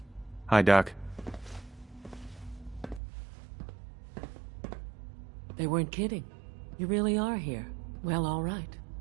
Hi, Doc. They weren't kidding. You really are here. Well, all right.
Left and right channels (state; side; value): drops out; left; at 3.0 s